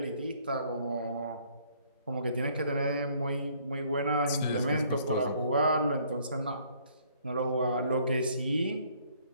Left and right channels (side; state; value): both; inverted; correlation -0.63